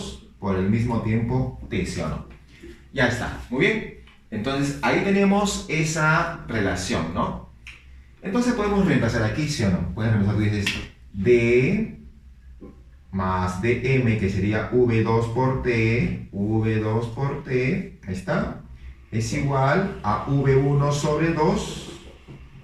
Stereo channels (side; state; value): both; identical; correlation 1.00